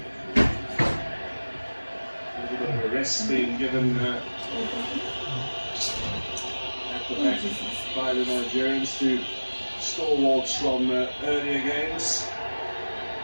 A little bit of a rest being given at the back by the Nigerians to stalwarts from earlier games.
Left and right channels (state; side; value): inverted; both; correlation -1.00